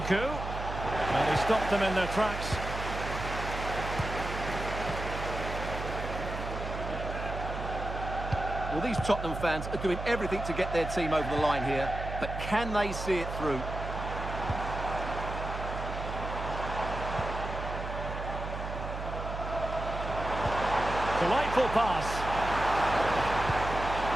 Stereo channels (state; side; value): noise; right; hum, 6 dB below the sound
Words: Well, he stopped them in their tracks. Well, these Tottenham fans are doing everything to get their team over the line here, but can they see it through? Delightful pass.